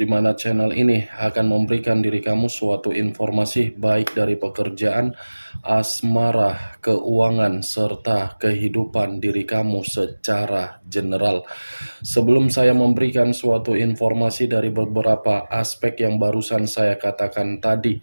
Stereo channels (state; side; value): inverted; both; correlation -1.00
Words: mana channel ini akan memberikan diri kamu suatu informasi baik dari pekerjaan, asmara, keuangan, serta kehidupan diri kamu secara general. Sebelum saya memberikan suatu informasi dari beberapa aspek yang barusan saya katakan tadi,